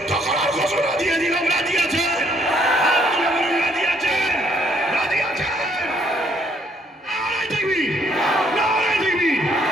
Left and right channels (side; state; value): both; normal; correlation 0.67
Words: করার ঘোষণা দিয়ে দিলাম। রাজি আছেন? হাত তুলে বলুন, রাজি আছেন? রাজি আছেন? নারায়ে তাকবীর, নারায়ে তাকবীর,